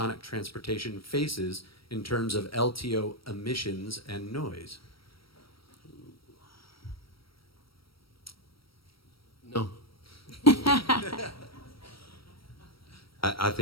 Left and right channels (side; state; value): right; late; 0.75 ms